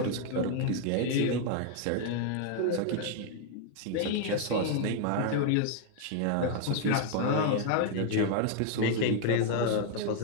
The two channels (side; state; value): both; different; correlation 0.00